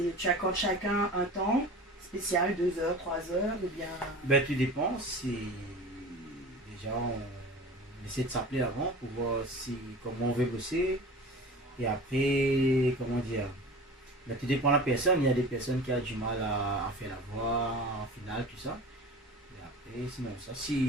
Tu accordes chacun un temps spécial, 2 heures, 3 heures ou bien... Ben, tout dépend. Déjà, on essaie de s'appeler avant pour voir comment on veut bosser. Et après, comment dire, ben, tout dépend de la personne. Il y a des personnes qui ont du mal à faire la voix en finale, tout ça. Et après, sinon, ça,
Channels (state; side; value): normal; both; correlation 0.37